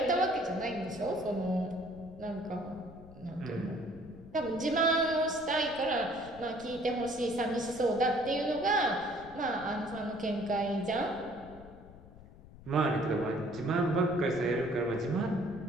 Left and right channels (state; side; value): noise; left; rumble, 19 dB below the sound